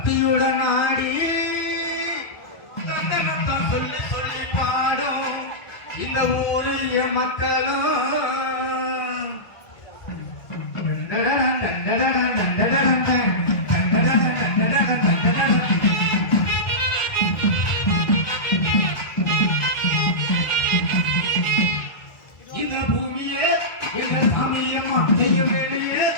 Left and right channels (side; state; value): right; late; 1.8 ms